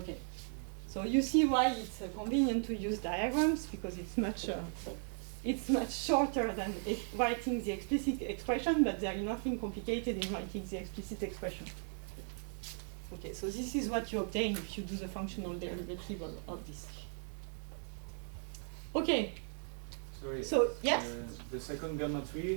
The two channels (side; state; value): left; silent; 53 dB below the other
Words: So you see why it's convenient to use diagrams, because it's much shorter than writing the explicit expression, but there is nothing complicated in writing the explicit expression. Okay, so this is what you obtain if you do the functional derivative of this. Okay. Sorry. So, yes? The second gamma